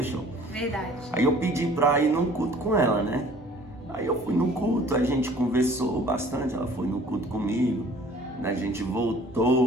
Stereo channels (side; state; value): both; normal; correlation 0.52